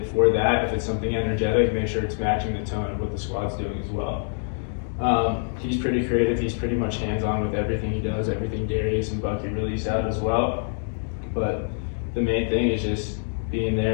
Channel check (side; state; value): right; silent; digital silence